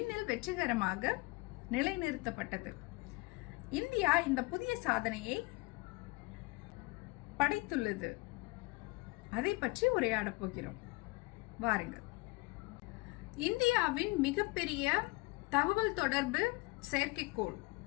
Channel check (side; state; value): right; quieter; 23.9 dB